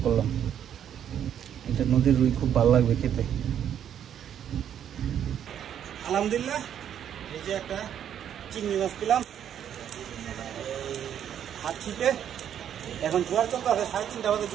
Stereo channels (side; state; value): left; quieter; 9.5 dB